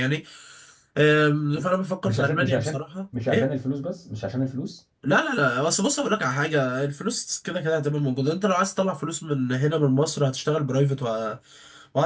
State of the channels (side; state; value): both; identical; correlation 1.00